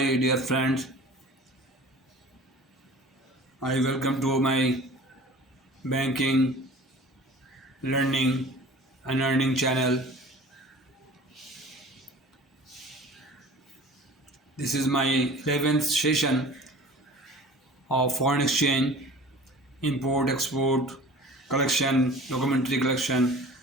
dear friends. I welcome to my banking, learning, and earning channel. This is my 11th session of foreign exchange, import, export, collection, documentary collection,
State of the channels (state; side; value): normal; both; correlation 0.43